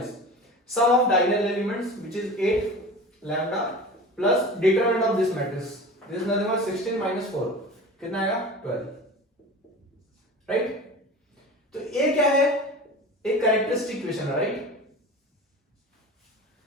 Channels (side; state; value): both; normal; correlation 0.35